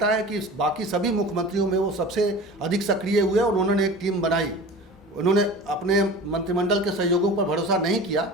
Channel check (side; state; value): both; normal; correlation 0.37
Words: है कि बाकी सभी मुख्यमंत्रियों में वो सबसे अधिक सक्रिय हुए और उन्होंने एक टीम बनाई। उन्होंने अपने मंत्रिमंडल के सहयोगों पर भरोसा नहीं किया,